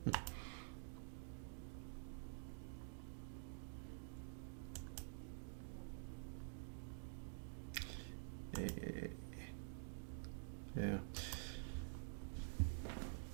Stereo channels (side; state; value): left; silent; digital silence